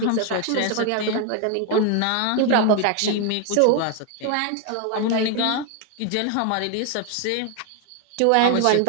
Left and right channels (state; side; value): different; both; correlation 0.01